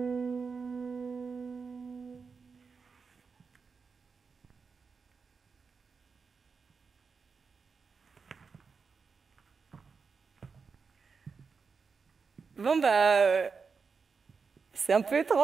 Bon c'est un peu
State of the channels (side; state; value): left; quieter; 5.2 dB